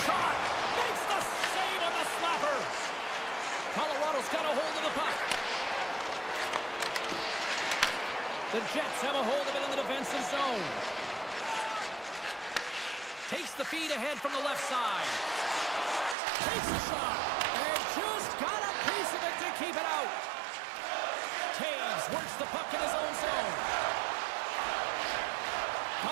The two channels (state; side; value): drops out; left; at 16.2 s